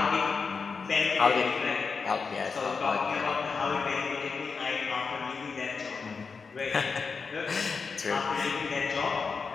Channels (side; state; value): right; quieter; 5.1 dB